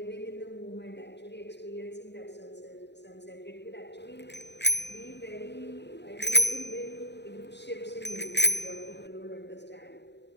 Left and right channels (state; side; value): late; right; 0.50 ms